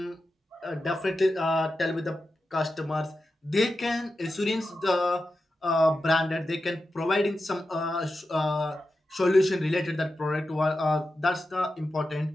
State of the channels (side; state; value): both; normal; correlation 0.91